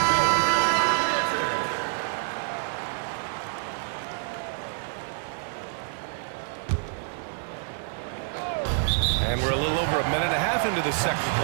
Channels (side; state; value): left; silent; digital silence